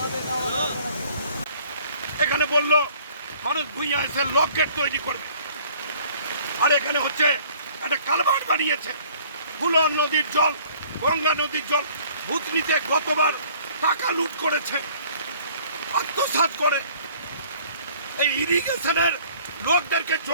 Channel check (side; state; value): both; inverted; correlation -0.55